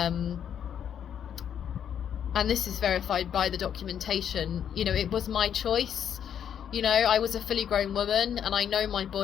and this is verified by the documentation. You know, it was my choice. You know, I was a fully grown woman and I know my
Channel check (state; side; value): quieter; right; 8.9 dB